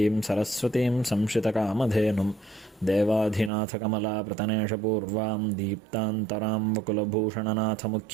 சரஸ்வதீம் சம்ஸ்ருதகாமதேனும் தேவாதிநாथकमलाप्रतनेशपूर्वां दीप्तान्तरां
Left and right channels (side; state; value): left; drops out; at 3.5 s